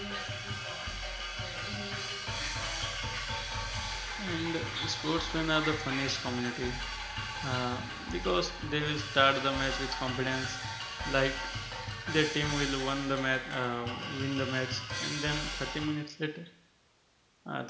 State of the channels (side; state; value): both; identical; correlation 1.00